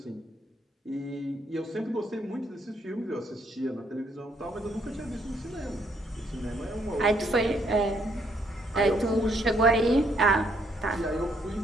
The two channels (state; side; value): normal; both; correlation 0.70